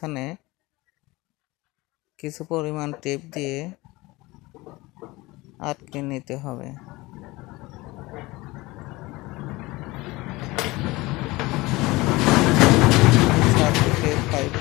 কিছু পরিমাণ টেপ দিয়ে আটকে নিতে হবে। থেকে 5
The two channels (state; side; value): quieter; right; 21.4 dB